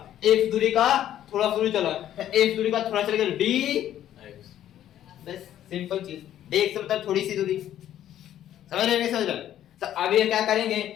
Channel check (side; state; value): right; quieter; 11.6 dB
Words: एक्स दूरी का थोड़ा सा दूरी चला, एक्स दूरी का थोड़ा चलेगा डी, बस सिंपल चीज। डी एक्स मतलब थोड़ी सी दूरी, समझ रहे, नहीं समझ रहे। तो अब ये क्या करेंगे,